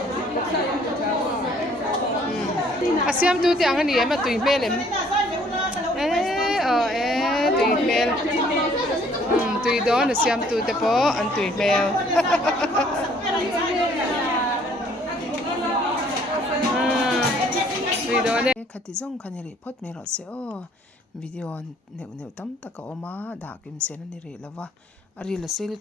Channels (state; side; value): normal; both; correlation 0.60